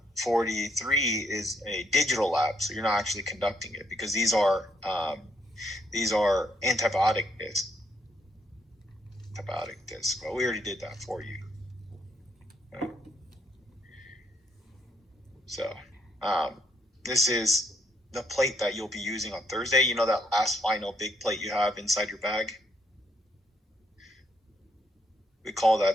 43 is a digital lab, so you're not actually conducting it because these are antibiotic discs. Well, we already did that for you. Okay. So this is the plate that you'll be using on Thursday, you know, that last final big plate you have inside your bag? We call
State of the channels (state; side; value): normal; both; correlation 0.73